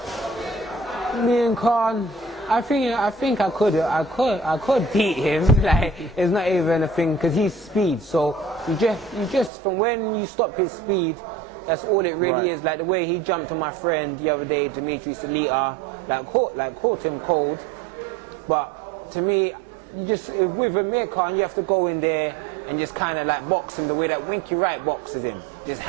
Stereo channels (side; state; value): left; drops out; at 9.5 s